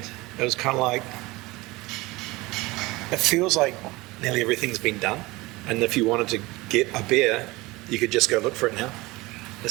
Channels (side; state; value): left; quieter; 21.7 dB